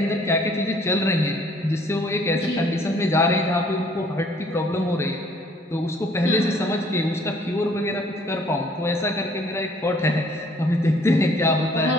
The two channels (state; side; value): normal; both; correlation 0.59